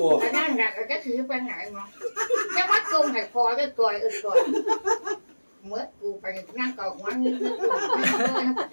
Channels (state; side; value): inverted; both; correlation -1.00